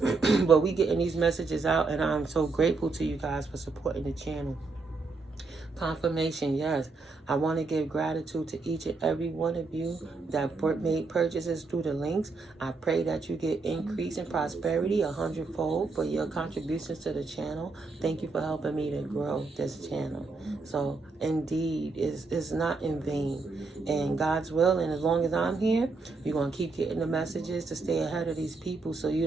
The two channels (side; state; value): left; quieter; 3.9 dB